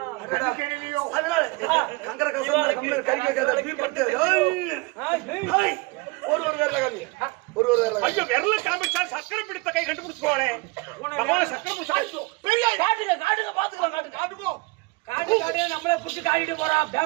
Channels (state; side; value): quieter; left; 25.7 dB